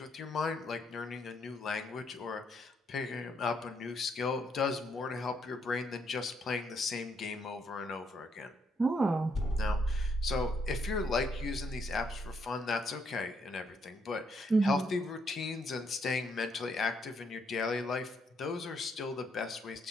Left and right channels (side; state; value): both; normal; correlation 0.74